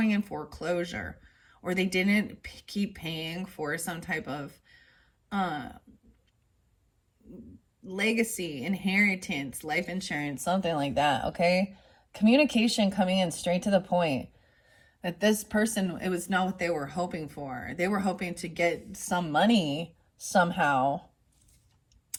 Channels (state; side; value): identical; both; correlation 1.00